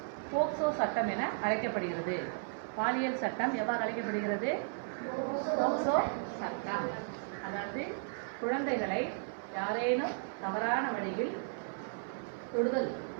போக்சோ சட்டம் என அழைக்கப்படுகிறது. பாலியல் சட்டம் எவ்வாறு அழைக்கப்படுகிறது? போக்சோ சட்டம். அதாவது குழந்தைகளை யாரேனும் தவறான வழியில் தொடுதல்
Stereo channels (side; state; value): left; silent; 55 dB below the other